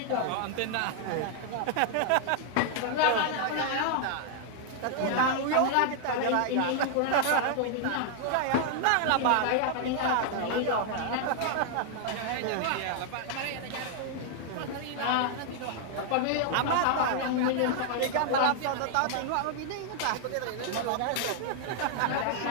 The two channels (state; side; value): different; both; correlation 0.00